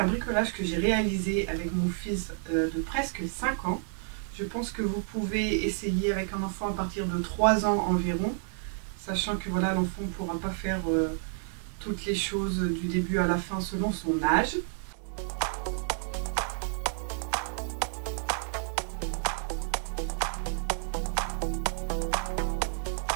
bricolage que j'ai réalisé avec mon fils de presque 5 ans. Je pense que vous pouvez essayer avec un enfant à partir de 3 ans environ, sachant que voilà, l'enfant ne pourra pas faire toutes les choses du début à la fin selon son âge.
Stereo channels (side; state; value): left; silent; digital silence